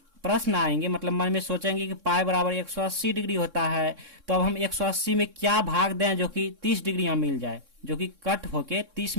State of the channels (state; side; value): late; left; 3.6 ms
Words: प्रश्न आएंगे, मतलब मन में सोचेंगे कि पाई बराबर 180 डिग्री होता है, तो अब हम 180 में क्या भाग दें जो कि 30 डिग्री यहाँ मिल जाए, जो कि कट होके 30